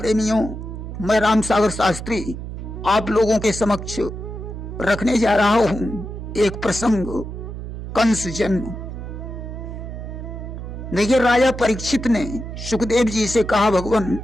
मैं राम सागर शास्त्री आप लोगों के समक्ष रखने जा रहा हूं एक प्रसंग, कंस जन्म। देखिए, राजा परीक्षित ने सुखदेव जी से कहा, भगवान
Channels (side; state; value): right; noise; hum, 8 dB below the sound